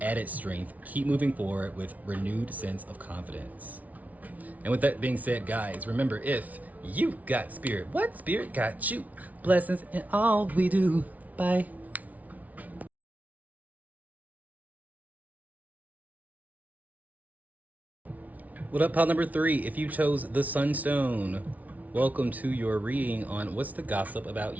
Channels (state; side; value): late; left; 0.072 ms